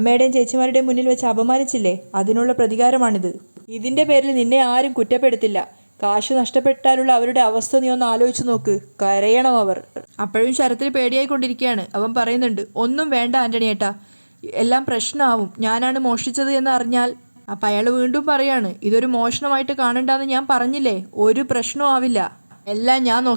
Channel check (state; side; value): inverted; both; correlation -1.00